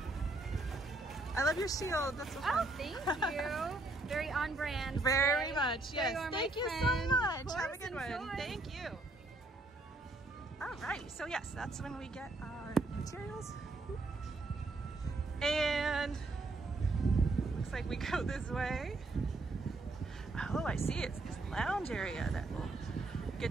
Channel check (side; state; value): left; quieter; 3.0 dB